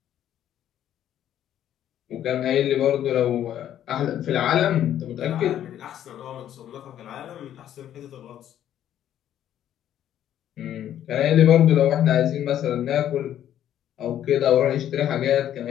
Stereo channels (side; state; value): right; quieter; 11.0 dB